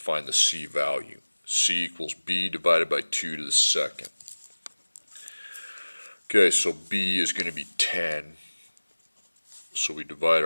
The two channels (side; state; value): both; inverted; correlation -1.00